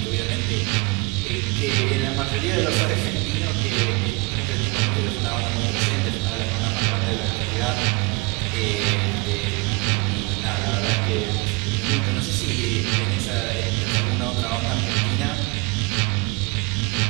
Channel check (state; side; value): quieter; left; 26.8 dB